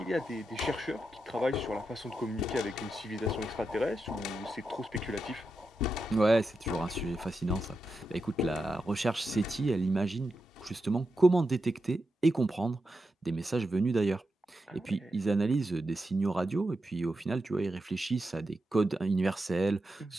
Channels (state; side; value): normal; both; correlation 0.87